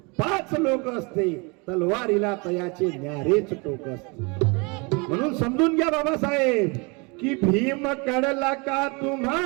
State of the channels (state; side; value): quieter; left; 29.8 dB